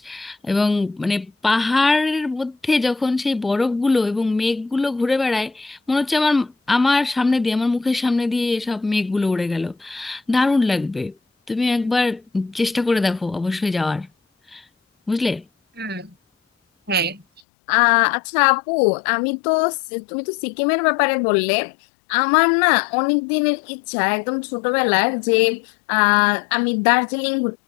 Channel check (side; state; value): right; drops out; at 17.4 s